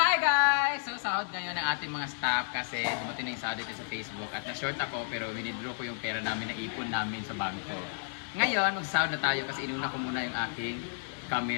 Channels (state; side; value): silent; right; digital silence